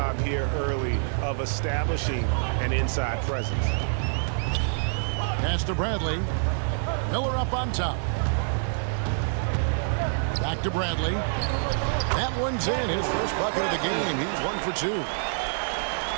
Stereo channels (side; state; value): left; silent; digital silence